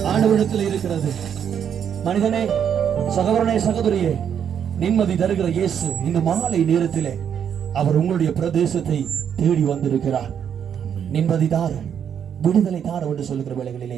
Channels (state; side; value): quieter; left; 8.4 dB